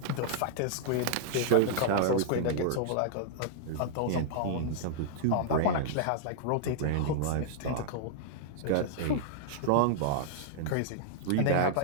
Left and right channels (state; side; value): different; both; correlation -0.01